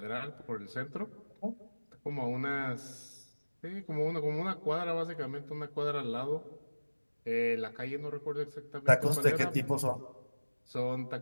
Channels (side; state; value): both; inverted; correlation -1.00